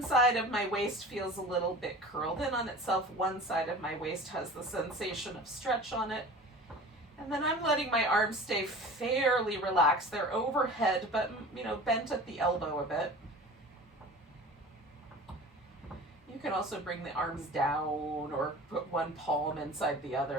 side of my waist feels a little bit curled in on itself. One side of my waist has the sensation of stretch on it. And then I'm letting my arms stay fairly relaxed. They're overhead, but, bent at the elbow a bit. You can also bring the arms down or put one palm inside the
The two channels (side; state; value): both; normal; correlation 0.39